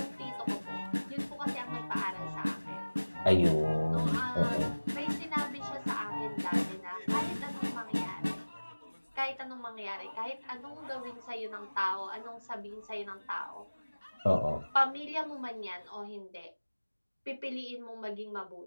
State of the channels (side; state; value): both; inverted; correlation -1.00